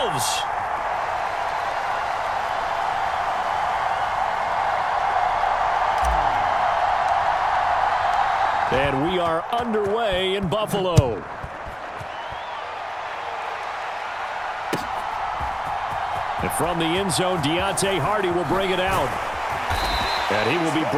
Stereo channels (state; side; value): identical; both; correlation 1.00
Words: And we are underway in Buffalo. And from the end zone, Deontay Hardy will bring it out. And he will be